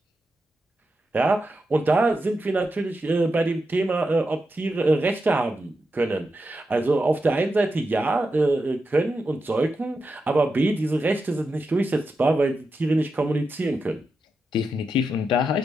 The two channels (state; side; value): normal; both; correlation 0.88